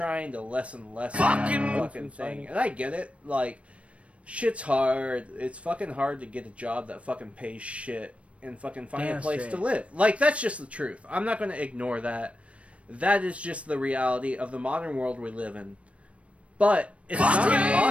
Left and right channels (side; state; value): left; late; 0.062 ms